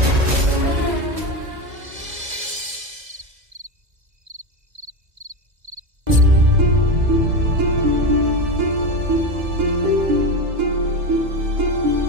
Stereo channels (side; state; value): left; late; 2.0 ms